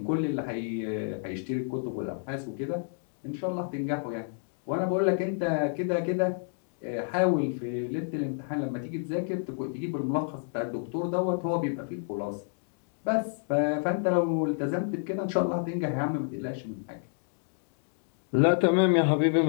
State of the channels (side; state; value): right; silent; digital silence